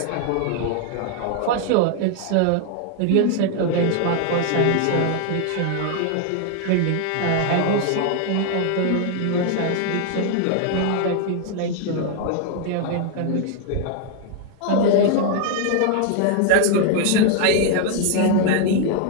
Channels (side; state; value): both; different; correlation 0.00